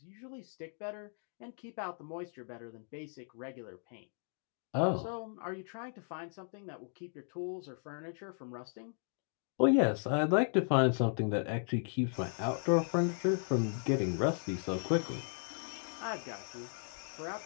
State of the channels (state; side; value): silent; right; 54 dB below the other